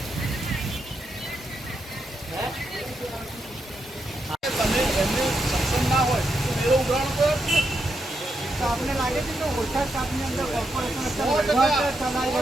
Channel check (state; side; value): normal; both; correlation 0.82